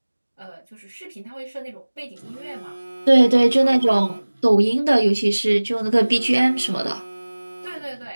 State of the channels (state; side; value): inverted; both; correlation -1.00